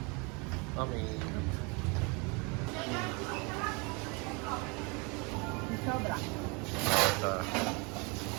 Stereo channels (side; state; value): left; quieter; 30.5 dB